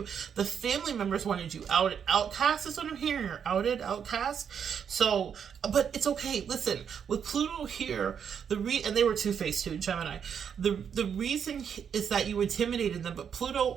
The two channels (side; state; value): left; quieter; 7.6 dB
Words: The family members wanted you outed. Outcast is what I'm hearing, or outed, outcast. So, but it's okay. Listen, with Pluto here, and they were two-faced too, Gemini. The reason is that you intimidated them, but